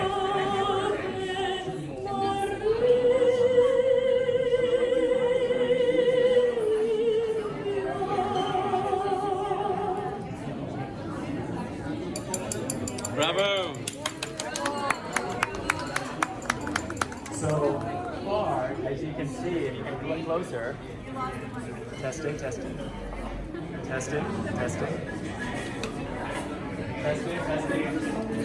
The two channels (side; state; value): both; identical; correlation 1.00